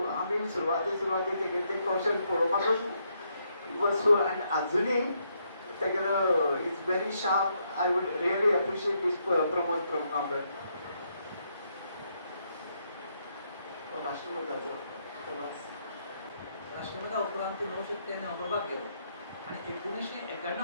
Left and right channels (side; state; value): both; inverted; correlation -0.76